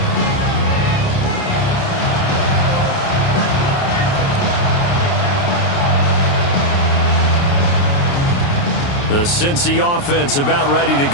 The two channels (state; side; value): late; right; 29 ms